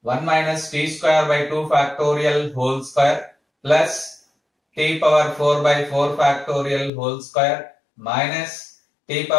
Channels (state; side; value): drops out; right; at 6.9 s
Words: 1 minus t square by 2 factorial whole square plus t power 4 by 4 factorial whole square minus t